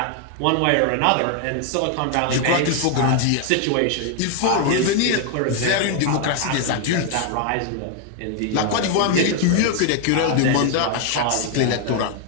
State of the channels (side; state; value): both; different; correlation 0.00